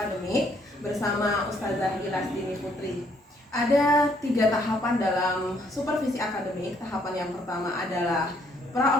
bersama Ustazah Gilasdini Putri. Ada 3 tahapan dalam supervisi akademik. Tahapan yang pertama adalah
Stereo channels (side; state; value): both; normal; correlation 0.67